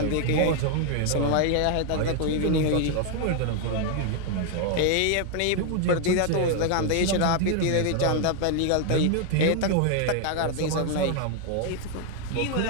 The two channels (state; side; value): different; both; correlation 0.00